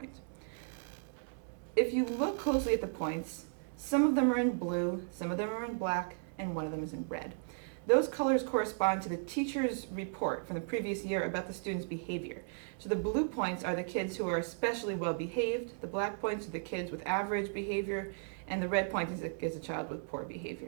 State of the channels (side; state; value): left; silent; digital silence